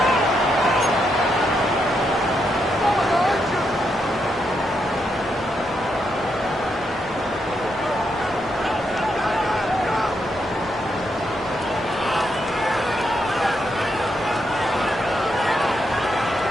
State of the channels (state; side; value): noise; left; hum, 27 dB below the sound